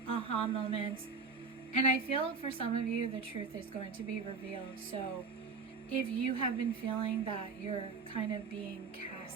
aha moments, and I feel for some of you the truth is going to be revealed. So if you have been feeling that you're kind of being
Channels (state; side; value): quieter; left; 4.7 dB